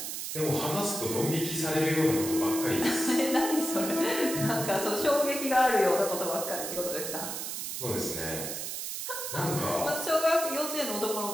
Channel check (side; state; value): right; noise; hiss, 5 dB below the sound